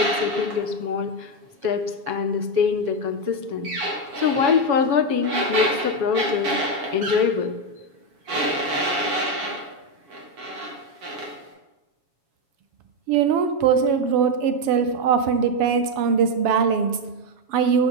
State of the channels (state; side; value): late; left; 7.2 ms